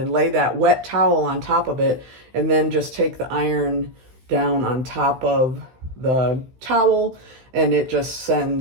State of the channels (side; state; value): left; late; 16 ms